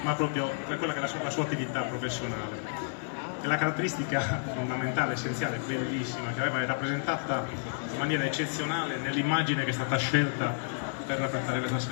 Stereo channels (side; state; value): right; silent; digital silence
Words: ma proprio per quella che è la sua attività professionale. E la caratteristica fondamentale, essenziale, bellissima, che aveva rappresentata in maniera eccezionale nell'immagine che è stata scelta per rappresentare questa